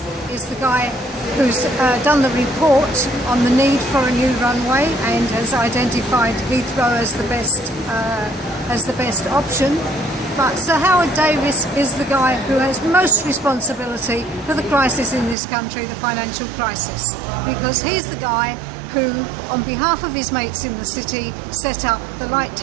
is the guy who's done the report on the need for a new runway and has identified Heathrow as the best option. But Sir Howard Davies is the guy who has most responsibility for the crisis in this country, the financial crisis, because he's the guy who, on behalf of his mates in the city, set up the Light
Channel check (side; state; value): left; drops out; at 15.4 s